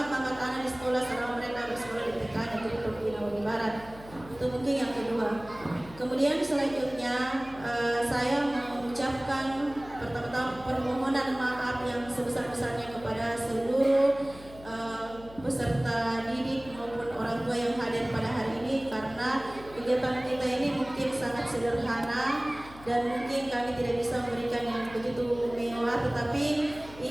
anak di sekolah selama mereka bersekolah di TK Negeri Pembina Wadi Barat. Itu mungkin yang kedua. Kemudian selanjutnya saya mengucapkan pertama-tama permohonan maaf yang sebesar-besarnya kepada seluruh peserta didik maupun orang tua yang hadir pada hari ini, karena kegiatan kita ini mungkin sangat sederhana dan mungkin kami tidak bisa memberikan yang begitu mewah, tetapi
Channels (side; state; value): left; noise; hum, 19 dB below the sound